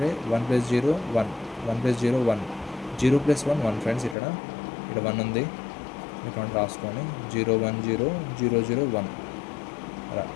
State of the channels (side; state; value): right; drops out; at 4.2 s